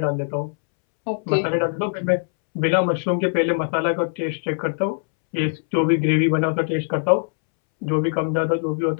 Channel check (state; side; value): silent; right; 64 dB below the other